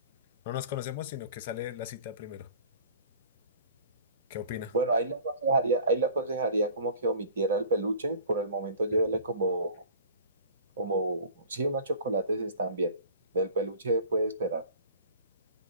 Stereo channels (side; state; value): both; inverted; correlation -0.44